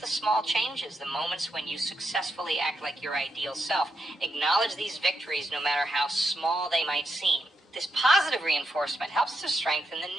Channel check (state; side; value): normal; both; correlation 0.83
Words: small changes, the moments when you successfully act like your ideal self. Acknowledge these victories no matter how small they might seem. This positive reinforcement helps to strengthen the